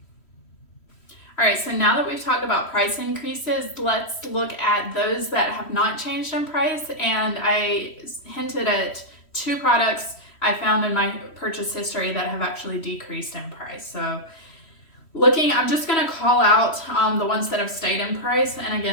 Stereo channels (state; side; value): late; right; 3.1 ms